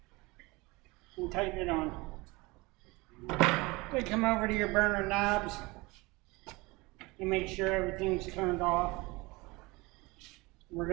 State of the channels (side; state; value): left; quieter; 23.9 dB